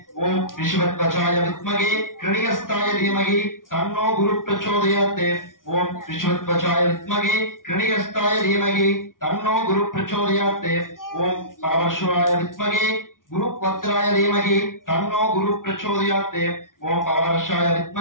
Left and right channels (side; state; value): right; late; 0.89 ms